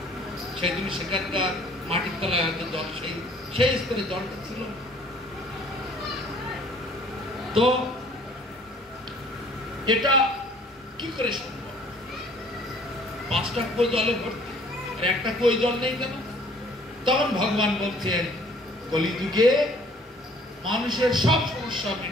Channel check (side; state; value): both; normal; correlation 0.56